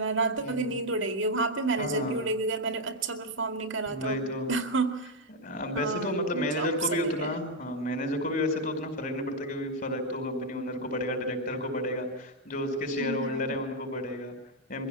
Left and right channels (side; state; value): both; normal; correlation 0.01